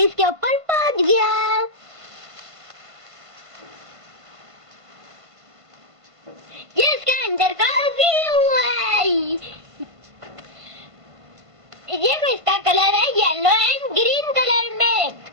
इसके ऊपर पहुंच गया। ये इसके अंदर का व्यू है। ये इसका कलर है येलो एंड ग्रीन कलर में।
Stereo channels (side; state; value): left; late; 1.5 ms